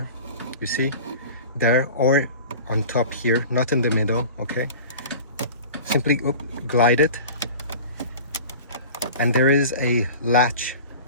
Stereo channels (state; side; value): inverted; both; correlation -0.38